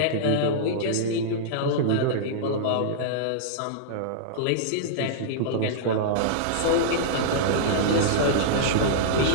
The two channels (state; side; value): different; both; correlation -0.02